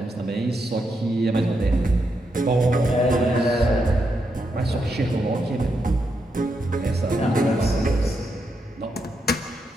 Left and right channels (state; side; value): normal; both; correlation 0.82